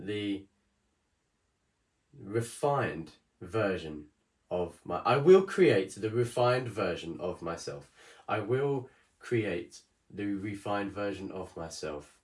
refined version of I will create the refined version of myself. I will create the refined version of myself.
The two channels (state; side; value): identical; both; correlation 1.00